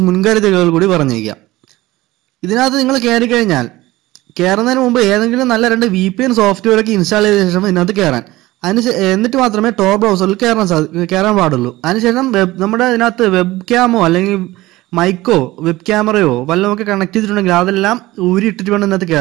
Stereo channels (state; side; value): quieter; left; 18.3 dB